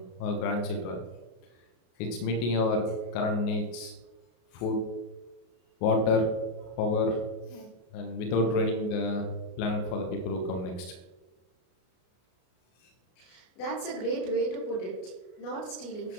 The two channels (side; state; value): right; late; 33 ms